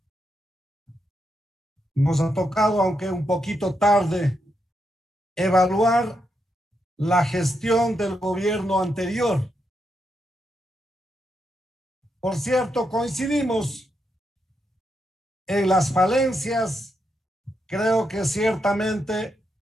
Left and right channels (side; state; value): both; normal; correlation 0.82